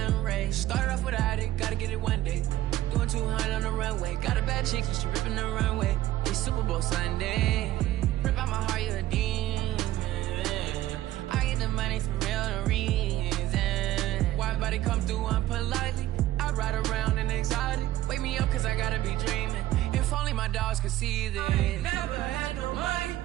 rays. Started off without it, gotta get it one day. Doing 200 on the runway. Got a bad chick, she ripping the runway. It's Super Bowl Sunday. Rip out my heart, you a demon. I get the money for real, no reason. Why everybody come through unpolitely? I ride around in exotic. Wake me up, cause I gotta be dreaming. If only my dogs could see this. Never had no money.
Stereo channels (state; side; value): quieter; left; 14.7 dB